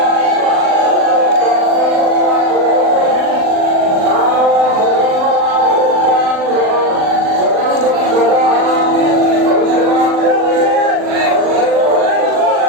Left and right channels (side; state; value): left; late; 39 ms